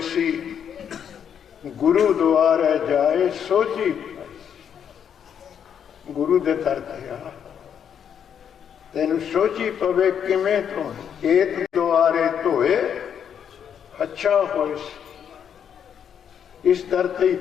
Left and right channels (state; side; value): quieter; right; 8.3 dB